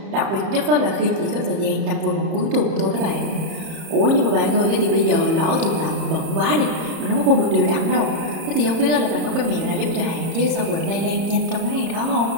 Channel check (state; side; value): late; left; 30 ms